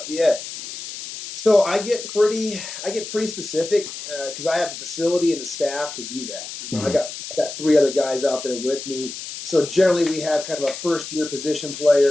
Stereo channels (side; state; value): left; noise; hiss, 10 dB below the sound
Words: Yeah. So I get pretty specific because I have the facility and the staff to do that. I got 3 other guys out there with me. So generally we have kind of a first-year position